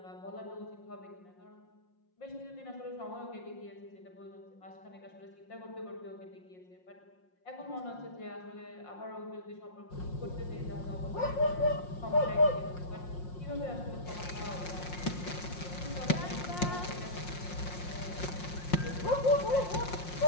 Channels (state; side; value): late; right; 5.6 ms